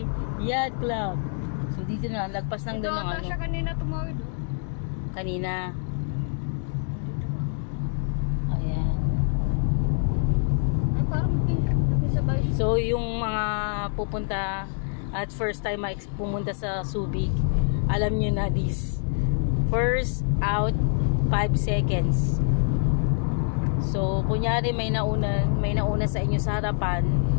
Yacht Club. So dito na, lagpas lang doon ng siya kanina tumawid. Kanina. Ayan. Ay, parang sabay. So yung mga pupunta at first time pumunta sa Subic, alam nyo na this. First out 5 seconds. So, kunyari may nauna sa inyo sa harapan,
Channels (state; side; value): silent; right; 61 dB below the other